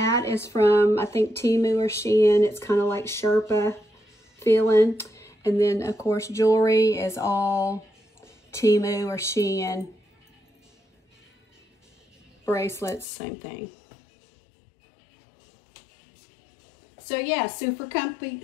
is from, I think, Temu or Shein. It's kind of like Sherpa feeling. And then, of course, jewelry is all Temu or Shein. Bracelets, same thing. So yeah, super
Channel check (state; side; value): drops out; right; at 13.1 s